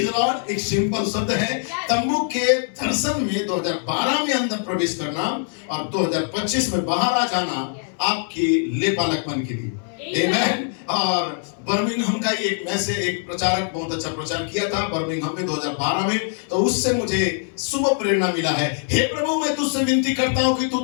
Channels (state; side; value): silent; right; 57 dB below the other